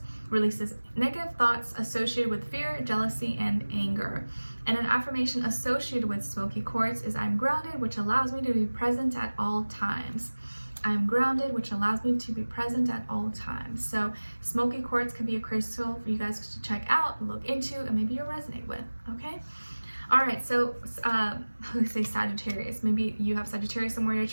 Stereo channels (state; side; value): inverted; both; correlation -1.00